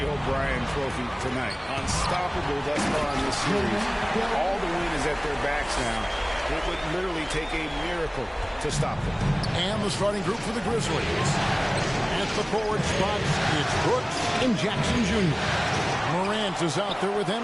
O'Brien trophy tonight. Unstoppable thus far in this series. All the wind is at their backs now. It would literally take a miracle to stop them. And the starting group for the Grizzlies. At the forward spots, it's Brooks and Jackson Jr. Morant is out there with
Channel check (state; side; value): identical; both; correlation 1.00